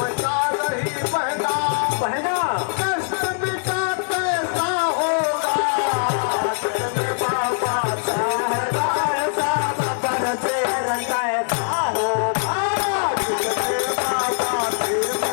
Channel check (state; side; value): silent; right; 64 dB below the other